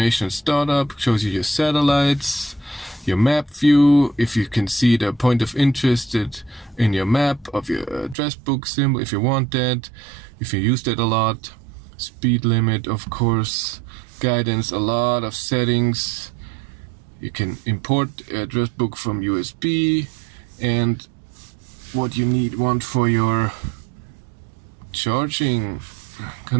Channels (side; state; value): left; drops out; at 8.2 s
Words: startup, shows you your satellites, your map view, if you can see the point of interest in your map of your address book symbol, if you want that, if you use that a lot. Speed limit, of course, guidance, a lot of settings. You can import address book from USB, and what you want for your charging